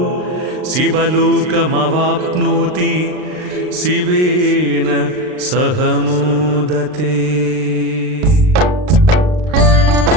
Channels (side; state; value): left; late; 39 ms